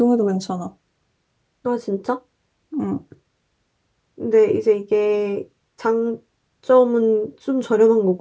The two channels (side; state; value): both; identical; correlation 1.00